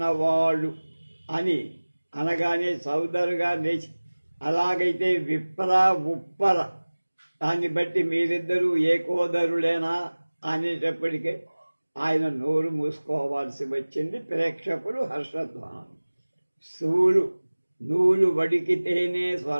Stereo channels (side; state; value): both; inverted; correlation -1.00